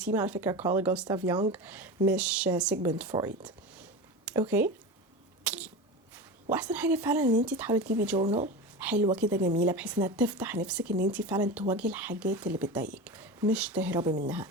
على فكره كارل جوستاف يونغ مش سيجموند فرويد. اوكي، واحسن حاجه فعلا ان انت تحاولي تجيبي جورنال حلوه كده جميله بحيث انها تفتح نفسك ان انت فعلا تواجهي الحاجات اللي بتضايقك مش تهربي منها.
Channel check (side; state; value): both; normal; correlation 0.26